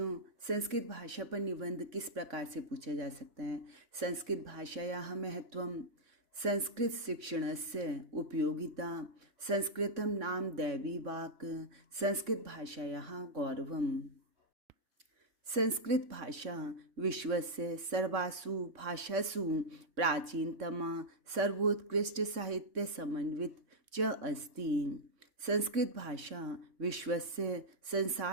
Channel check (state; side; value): late; left; 3.6 ms